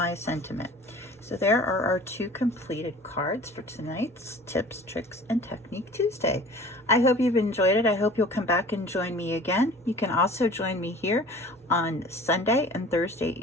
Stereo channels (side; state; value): both; normal; correlation 0.45